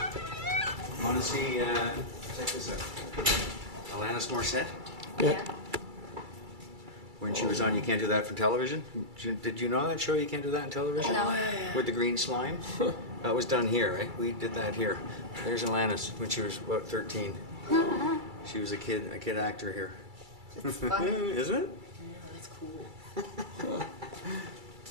Want to see, check this out. Alanis Morissette? Yeah. When she was on You Can't Do That for Television? Did you know that show, You Can't Do That on Television? No. With the green slime? That was done here, right? We did that here. There's Alanis when she was, what, 13. She was a kid actor here. That's funny. Isn't it? Yeah, that's cool.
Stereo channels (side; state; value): left; late; 2.3 ms